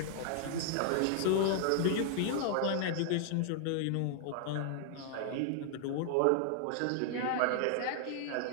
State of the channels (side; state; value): both; different; correlation -0.01